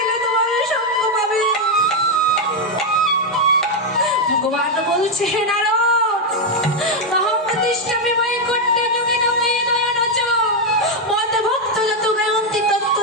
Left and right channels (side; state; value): both; normal; correlation 0.03